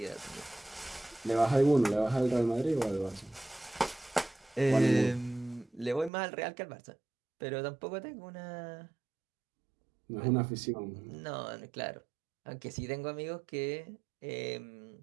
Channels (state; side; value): drops out; left; at 6.1 s